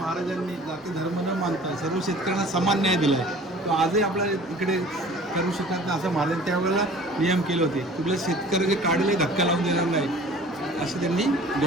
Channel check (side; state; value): both; normal; correlation 0.47